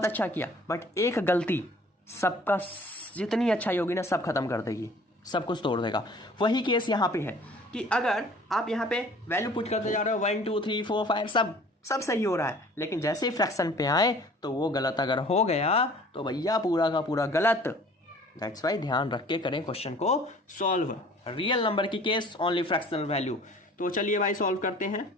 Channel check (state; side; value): normal; both; correlation 0.50